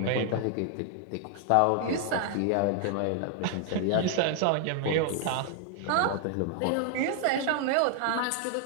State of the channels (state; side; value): different; both; correlation 0.00